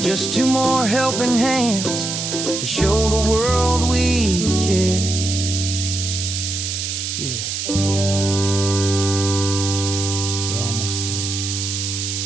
Just two more helping hands to show the world we care. Yeah, we're almost there.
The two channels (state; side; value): noise; right; hiss, 3 dB below the sound